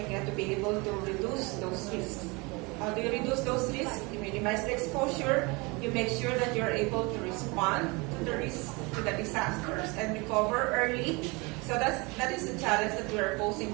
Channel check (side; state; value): left; quieter; 26.9 dB